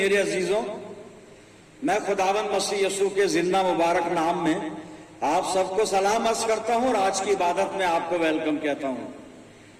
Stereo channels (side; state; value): both; identical; correlation 1.00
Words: अजीजों, मैं खुदावन मसीह यसू के जिंदा मुबारक नाम में आप सबको सलाम अर्ज करता हूं और आज की इबादत में आपको वेलकम कहता हूं।